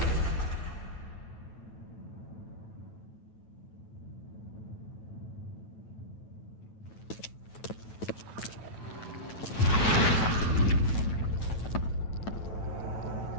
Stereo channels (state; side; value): late; right; 9.1 ms